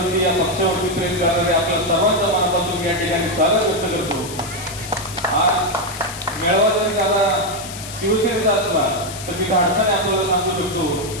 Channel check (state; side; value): noise; left; hiss, 11 dB below the sound